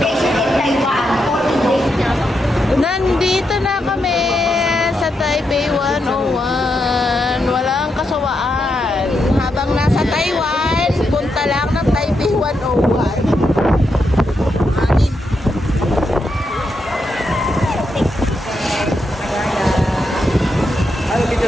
Nandito na kami sa Taipei 101. Walang kasawaan. Habang nasa Taiwan, punta lang ng Taipei 101. Anin.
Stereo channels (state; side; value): normal; both; correlation 0.83